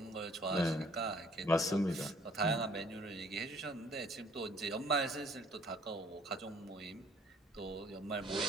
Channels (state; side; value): normal; both; correlation 0.58